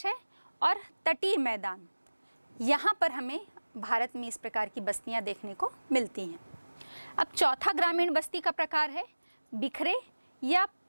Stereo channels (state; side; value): inverted; both; correlation -1.00